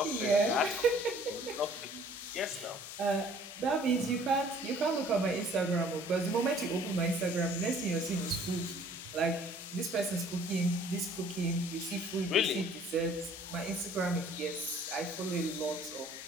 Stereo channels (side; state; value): both; normal; correlation 0.55